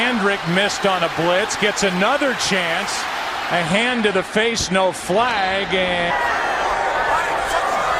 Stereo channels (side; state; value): both; identical; correlation 1.00